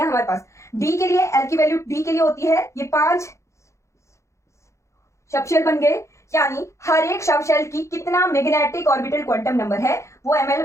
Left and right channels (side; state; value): right; late; 0.14 ms